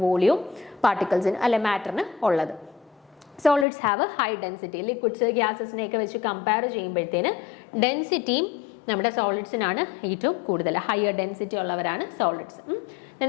വോളിയവും പാർട്ടിക്കിൾസിന് അല്ലെ മാറ്ററിന് ഉള്ളത്. Solids have high density. Liquids ഗ്യാസസിനെയൊക്കെ വെച്ച് കമ്പയർ ചെയ്യുമ്പോഴത്തേന് ഡെൻസിറ്റിയും നമ്മുടെ സോളിഡ്സിനാണ് ഏറ്റവും കൂടുതൽ. ഹയർ ഡെൻസിറ്റി ഉള്ളവരാണ് solids.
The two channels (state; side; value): drops out; right; at 3.7 s